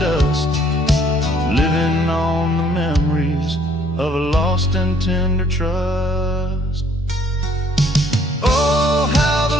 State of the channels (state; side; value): normal; both; correlation 0.63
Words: dust, living on the memories of a lost and tender trust. Oh, how